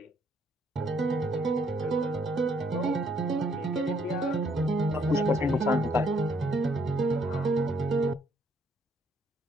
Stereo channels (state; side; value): normal; both; correlation 0.68